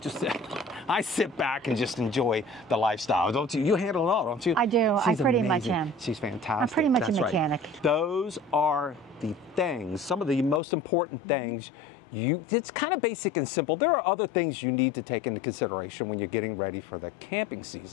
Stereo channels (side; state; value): right; drops out; at 10.6 s